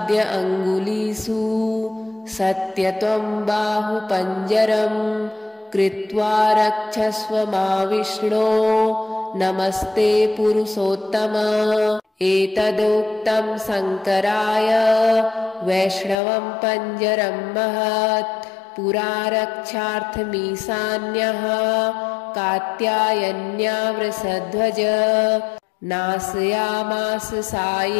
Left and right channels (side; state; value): right; drops out; at 16.2 s